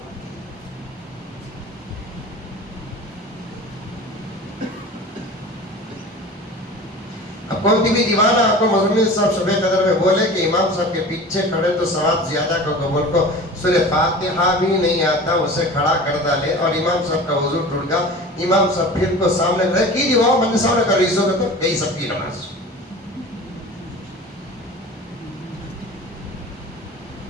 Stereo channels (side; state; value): both; normal; correlation 0.38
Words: اب کون بھی دیوانہ آپ کو مزمل صاحب شب قدر میں بولے کہ امام صاحب کے پیچھے کھڑے تو ثواب زیادہ کو قبول کو سورہ فاتحہ بھی نہیں آتا اسے کھڑا کر ڈالے اور امام صاحب کا وضو ٹوٹ گیا، امام صاحب پھر کو سامنے رہ کی دیواؤ من سامنے کا ریزو کا تو گئی سب کی نماز.